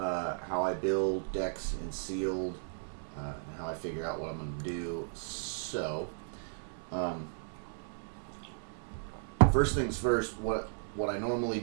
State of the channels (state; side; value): silent; left; 54 dB below the other